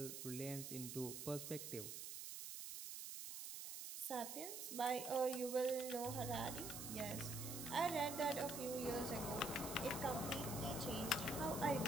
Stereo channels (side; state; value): right; noise; hiss, 6 dB below the sound